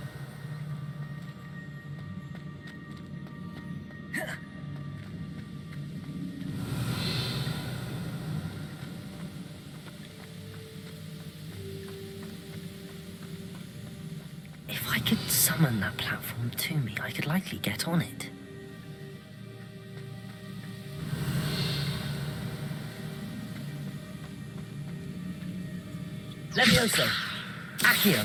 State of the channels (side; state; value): both; identical; correlation 1.00